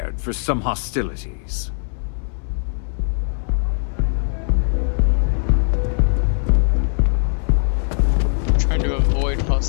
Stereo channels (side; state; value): right; silent; digital silence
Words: for some hostilities. Trying to avoid